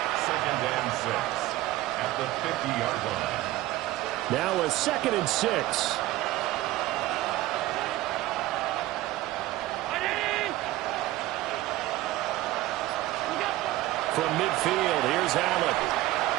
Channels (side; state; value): left; quieter; 16.7 dB